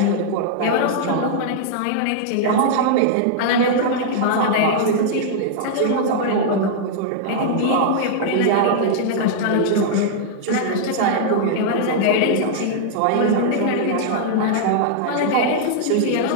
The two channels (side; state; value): both; different; correlation -0.01